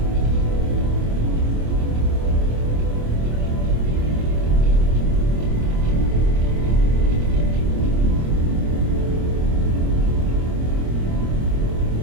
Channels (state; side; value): late; left; 26 ms